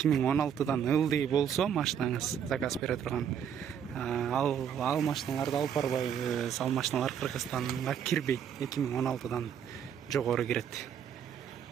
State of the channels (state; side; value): quieter; left; 8.4 dB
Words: ылдый болсо машинаңыз, заказ бере турган, ал машиналарды алып барбайбыз. Ал машиналар Кыргызстанга кирбейт. 2016дан жогору кирет.